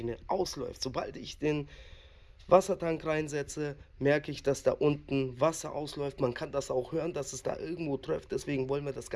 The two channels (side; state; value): both; identical; correlation 1.00